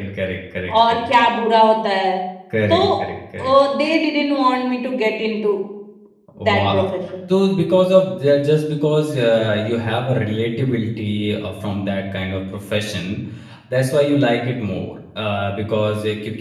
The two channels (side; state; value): both; identical; correlation 1.00